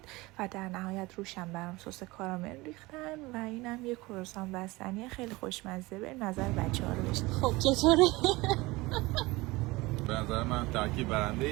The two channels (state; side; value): quieter; left; 21.7 dB